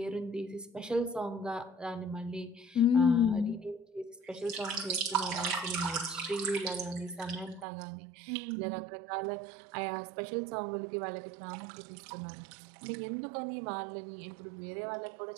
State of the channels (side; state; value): left; drops out; at 7.7 s